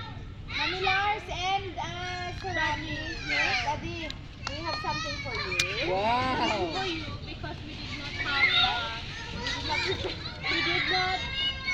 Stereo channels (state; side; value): identical; both; correlation 1.00